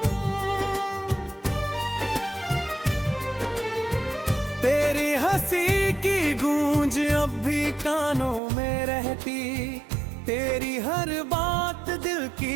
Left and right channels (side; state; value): left; drops out; at 8.4 s